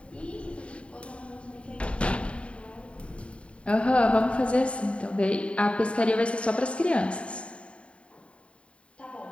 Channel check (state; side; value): late; right; 0.061 ms